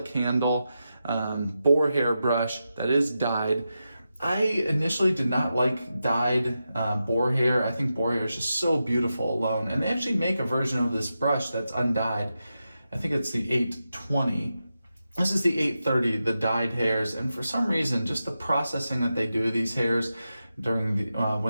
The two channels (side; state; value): both; inverted; correlation -0.89